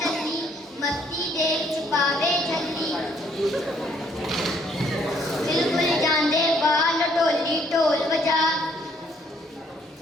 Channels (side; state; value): both; normal; correlation 0.66